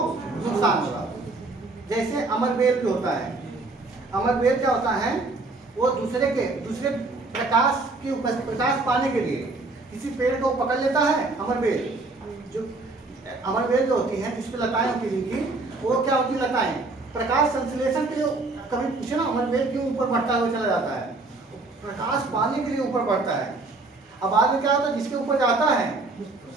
नुकसान होगा। जैसे अमरबेल भी होता है, अमरबेल क्या होता है, वो दूसरे प्रकाश पाने के लिए किसी पेड़ को पकड़ लेता है। अमरबेल जो होती है जिस पे लताएं होती हैं, वो क्या होती है, लताएं प्रकाश संश्लेषण के लिए, कभी पूछे ना अमरबेल क्यों ऊपर बढ़ता हुआ चला जाता है, प्रकाश पाने के लिए ऊपर बढ़ता है। अब बाद में क्या होता है, जिसके ऊपर जाता है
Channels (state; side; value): quieter; left; 3.3 dB